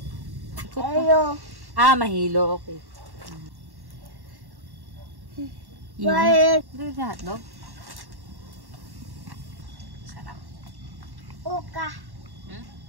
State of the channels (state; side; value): late; left; 1.1 ms